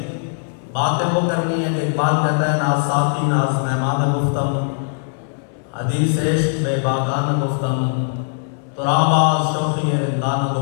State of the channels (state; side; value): silent; right; 65 dB below the other